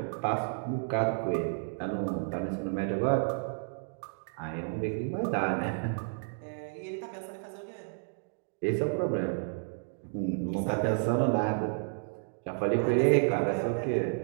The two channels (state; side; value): silent; left; digital silence